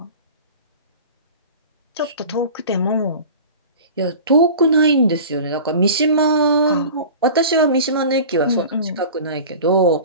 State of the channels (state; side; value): inverted; both; correlation -0.38